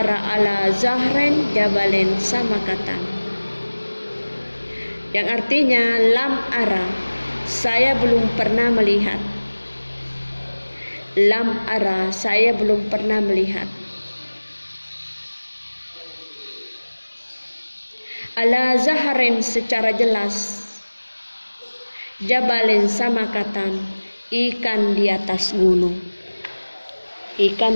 yang artinya lam ara, saya belum pernah melihat, ala zaharen secara jelas, jabalen samakatan ikan di atas gunung,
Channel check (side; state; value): both; inverted; correlation -1.00